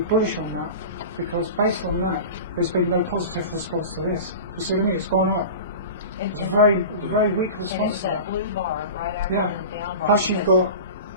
bullish on that, because based on that, there's been no positive response to this. You see what I mean? It's gone up. It's a very weak And response it's to that that. blue bar right after Yeah. the down bar. Plus you've got,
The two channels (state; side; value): inverted; both; correlation -0.32